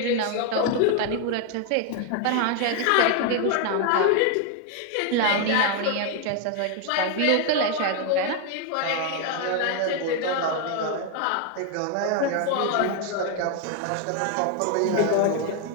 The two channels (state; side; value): different; both; correlation 0.01